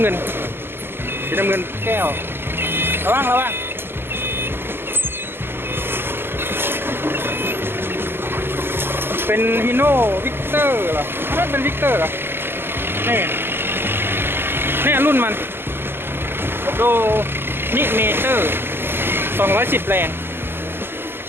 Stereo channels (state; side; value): late; left; 0.11 ms